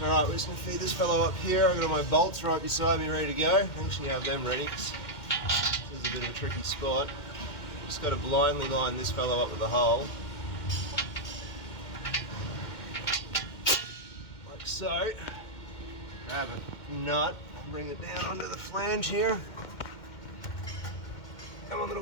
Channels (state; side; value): late; right; 2.1 ms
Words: Alright, we're just going to feed this fellow up here. I've got my bolts right beside me ready to go. I actually have them ready because this is a bit of a tricky spot. Just got to blindly line this fellow up with a hole. Like so. Grab a nut and bring it down onto the flange here. Come on, little